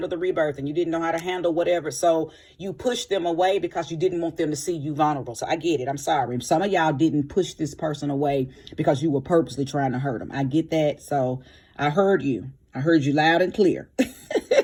the rebirth, and you didn't know how to handle whatever. So you pushed them away because you didn't want them to see you vulnerable. So I get it. I'm sorry. Some of y'all didn't push this person away because you were purposely trying to hurt them. I get that. So I heard you. I heard you loud and clear.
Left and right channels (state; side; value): identical; both; correlation 1.00